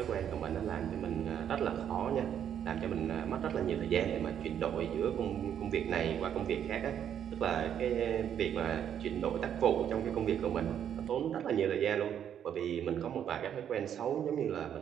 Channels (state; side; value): quieter; left; 9.3 dB